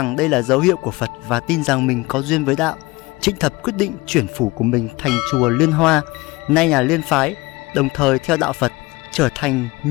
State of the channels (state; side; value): quieter; right; 22.4 dB